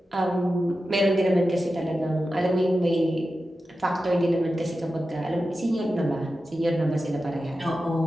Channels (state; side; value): normal; both; correlation 0.92